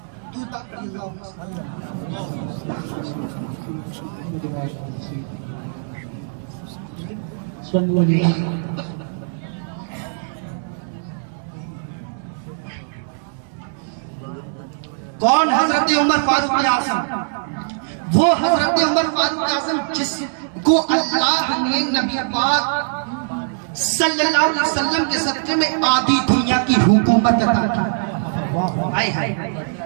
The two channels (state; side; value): silent; left; digital silence